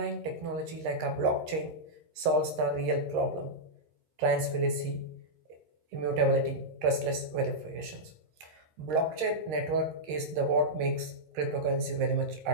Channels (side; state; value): left; late; 13 ms